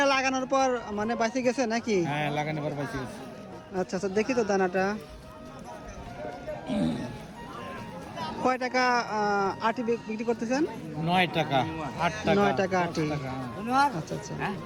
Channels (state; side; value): identical; both; correlation 1.00